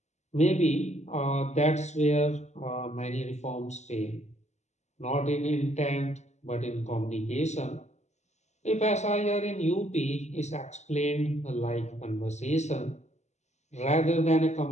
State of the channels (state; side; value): late; right; 0.33 ms